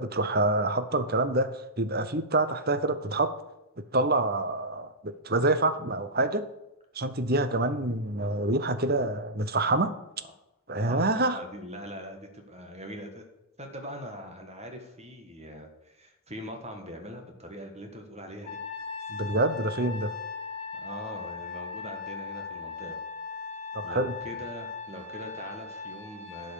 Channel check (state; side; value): normal; both; correlation -0.11